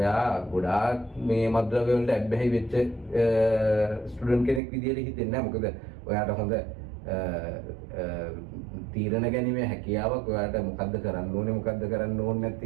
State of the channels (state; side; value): drops out; left; at 4.6 s